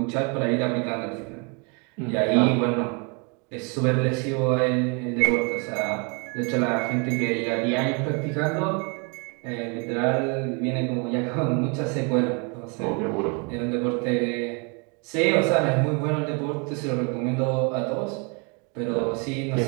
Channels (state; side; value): quieter; left; 34.1 dB